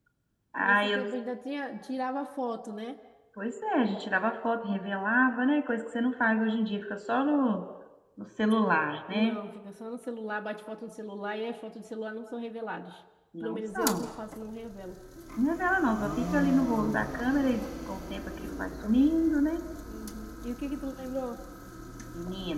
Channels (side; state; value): both; identical; correlation 1.00